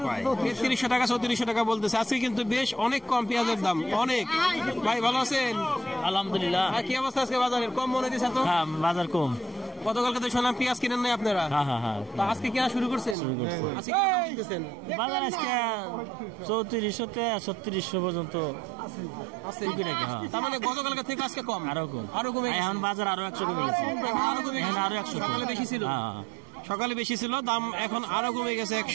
পায়। 3300 টাকা, 3400 টাকা বলতেছে। আজকে কিন্তু বেশ অনেক কম পেঁয়াজের দাম, অনেক। ভাই ভালো আছেন? আলহামদুলিল্লাহ। কি অবস্থা আজকে বাজারের? কম মনে হইতেছে তো? হ্যাঁ, বাজার কম। গতকালকে তো শুনলাম পেঁয়াজ কিনেন নাই আপনারা। হ্যাঁ। তা আজকে কেনা শুরু করছেন? আজকে কি দাম দিতেছেন? বাজার আজকে 3400 থেকে 3600 পর্যন্ত আছে। হ্যাঁ। তার মানে গতকালকে থেকে আজকে কম, আরো কম, আরো কমে গেছে। এখন বাজার আরো 100 কমে গেছে। আরো কমে গেছে। আরো 100 সকালে বেশি ছিল। হ্যাঁ, সকালে বেশি ছিল, দাম এখন আরো কমে গেছে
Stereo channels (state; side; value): drops out; left; at 13.2 s